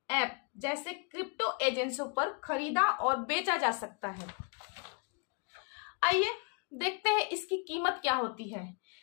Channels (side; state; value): right; quieter; 34.1 dB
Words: ऐप जैसे क्रिप्टो एजेंसियों पर खरीदा और बेचा जा सकता है। आइए देखते हैं इसकी कीमत क्या होती है।